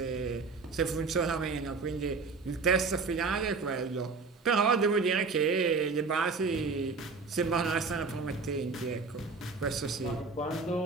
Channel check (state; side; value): quieter; left; 4.4 dB